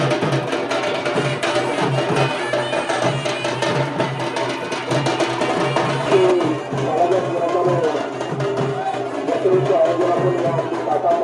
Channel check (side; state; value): both; identical; correlation 1.00